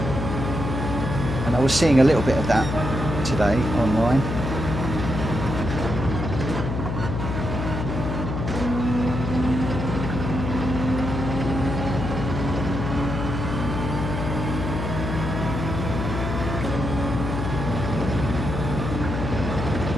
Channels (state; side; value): noise; left; hum, 3 dB below the sound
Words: And I was seeing a little bit of that today online.